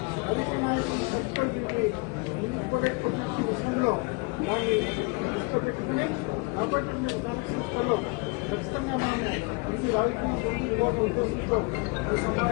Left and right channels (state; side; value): quieter; right; 28.5 dB